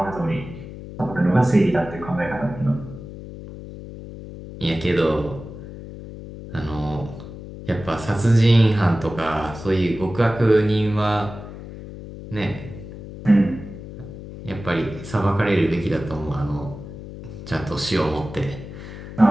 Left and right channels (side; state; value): left; noise; hum, 12 dB below the sound